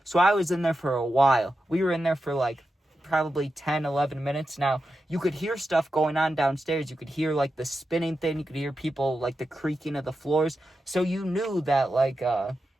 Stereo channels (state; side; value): normal; both; correlation 0.89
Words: So I was in there for a while. We were in there for like probably 10, 11 minutes. Now, you could hear stuff going on downstairs. You could hear like the spinning thing. You could hear people, like the creaking of the floors. So you knew that like,